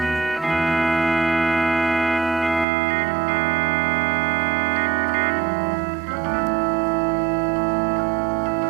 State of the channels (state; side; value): drops out; left; at 2.7 s